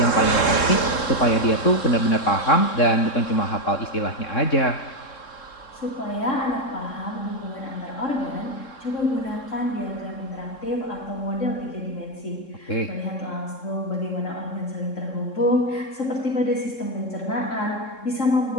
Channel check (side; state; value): right; late; 3.7 ms